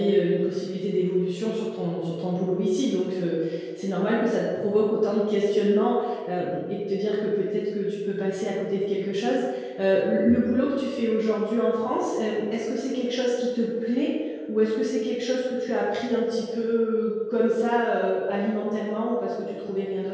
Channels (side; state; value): both; identical; correlation 1.00